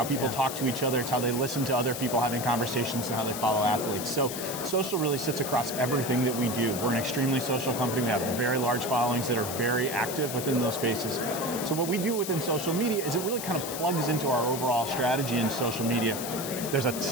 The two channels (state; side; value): noise; left; hiss, 7 dB below the sound